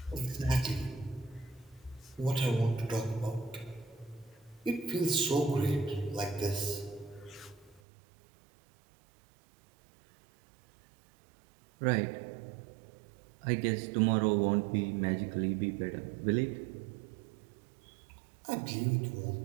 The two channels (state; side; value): drops out; left; at 7.8 s